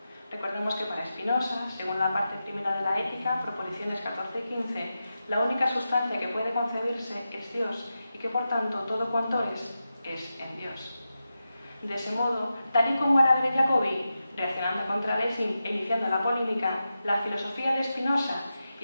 Recordemos que para Spinoza, según la parte primera de la Ética, proposiciones 14 y 15, la única sustancia que puede concebirse es Dios y que por tanto todo cuanto es en Dios. De ese modo, tal y como Araber y Jacobi, reaccionando contra Lessing e iniciando la polémica, la filosofía de Spinoza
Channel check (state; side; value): inverted; both; correlation -0.91